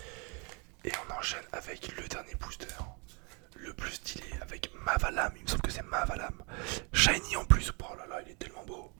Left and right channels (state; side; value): quieter; left; 32.3 dB